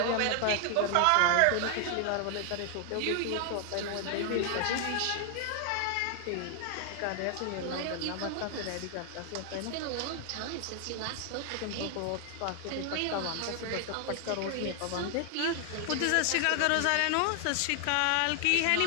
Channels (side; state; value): both; different; correlation 0.00